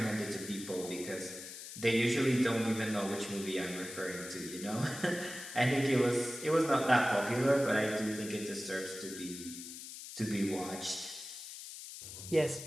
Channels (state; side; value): noise; left; hiss, 11 dB below the sound